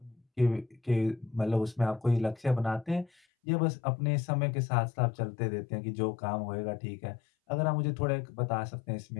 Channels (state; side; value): drops out; right; at 3.1 s